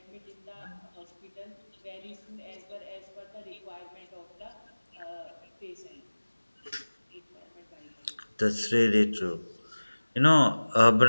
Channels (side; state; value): both; inverted; correlation -1.00